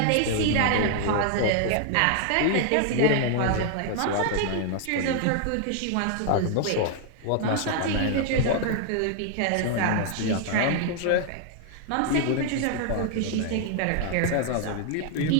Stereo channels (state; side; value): different; both; correlation 0.00